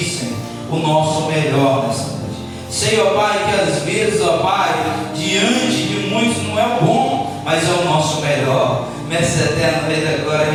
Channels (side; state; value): both; identical; correlation 1.00